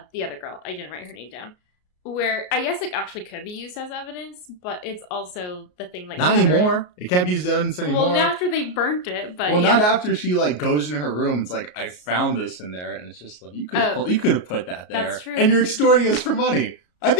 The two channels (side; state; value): right; late; 33 ms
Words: the other girl. I didn't write her name down. Where I guess it actually could be used as evidence, but it's also the thing like not anymore. It can't be used as evidence anymore. Well, after they burnt it, but not after she like goes in her room. It's like I found this in there, and it's just like you could have put that there. That's true. And you're extorting us for money. I